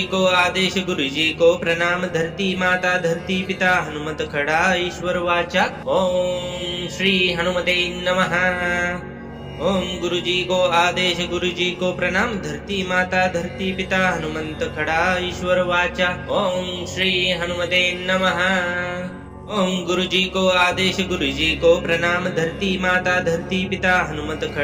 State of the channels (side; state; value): both; identical; correlation 1.00